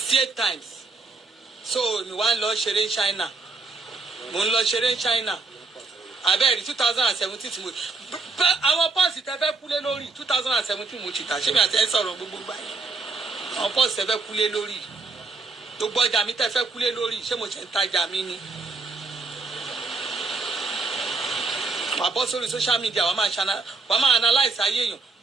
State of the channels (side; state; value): left; quieter; 3.9 dB